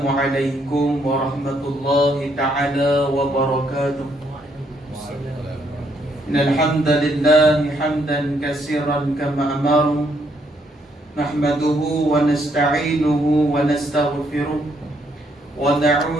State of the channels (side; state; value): both; normal; correlation 0.72